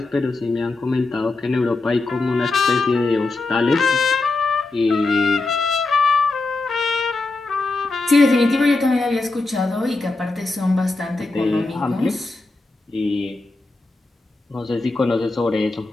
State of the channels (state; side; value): quieter; right; 3.3 dB